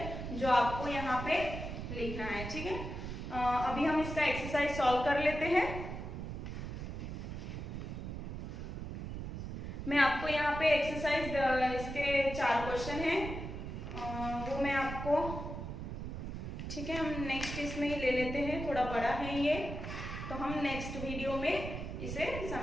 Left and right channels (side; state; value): right; noise; rumble, 6 dB below the sound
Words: जो आपको यहाँ पे लिखना है। ठीक है, अभी हम इसका एक्सरसाइज सॉल्व कर लेते हैं। मैं आपको यहाँ पे एक्सरसाइज इसके 4 क्वेश्चन हैं, वो मैं आपको ठीक है, हम नेक्स्ट इसमें ही ले लेते हैं, थोड़ा बड़ा है ये, तो हम नेक्स्ट वीडियो में इसे